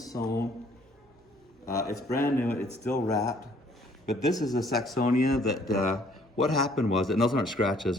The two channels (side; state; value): both; normal; correlation 0.61